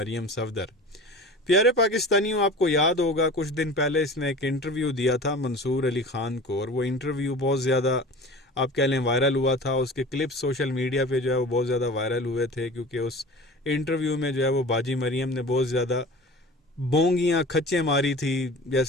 صفدر۔ پیارے پاکستانیوں، آپ کو یاد ہوگا کچھ دن پہلے اس نے ایک انٹرویو دیا تھا منصور علی خان کو، اور وہ انٹرویو بہت زیادہ آپ کہہ لیں وائرل ہوا تھا۔ اس کے کلپس سوشل میڈیا پہ جو ہے وہ بہت زیادہ وائرل ہوئے تھے، کیونکہ اس انٹرویو میں جو ہے وہ باجی مریم نے بہت زیادہ بونگیاں کھچیں ماری تھی۔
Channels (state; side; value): normal; both; correlation 0.38